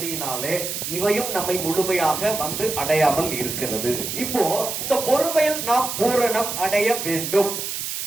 இவையும் நம்மை முழுமையாக வந்து அடையாமல் இருக்கிறது. இப்போ இந்த பொறுமையில் நாம் பூரணம் அடைய வேண்டும்.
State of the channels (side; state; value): right; noise; hiss, 4 dB below the sound